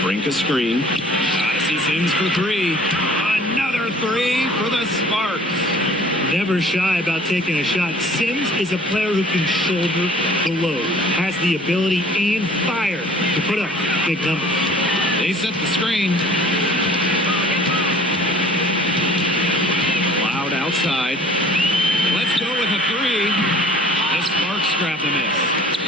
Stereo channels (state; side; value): normal; both; correlation 0.50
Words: Brink a screen. Odyssey Sims for 3. Another 3 for the Sparks. Never shy about taking a shot. Sims is a player who can shoulder the load, has the ability and fire to put up big numbers. They set the screen. Cloud outside. Let's go with a 3. The Sparks grab the miss.